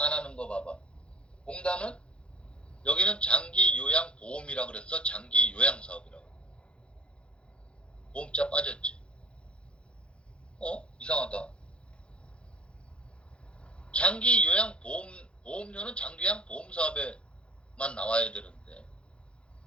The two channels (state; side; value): late; right; 0.057 ms